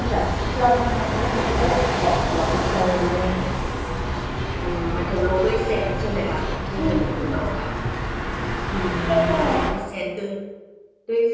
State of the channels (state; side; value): identical; both; correlation 1.00